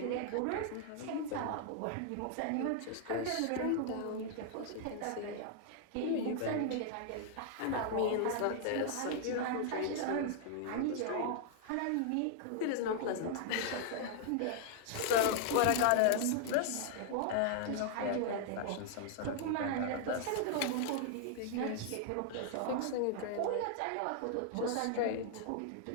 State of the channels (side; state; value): both; different; correlation 0.00